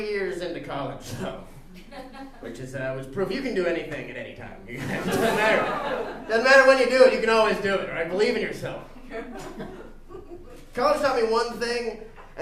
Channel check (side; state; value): both; identical; correlation 1.00